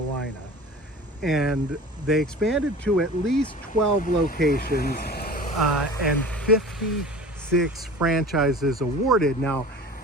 And they expanded to at least 12 locations and 56 franchises awarded. Now,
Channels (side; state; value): both; normal; correlation 0.40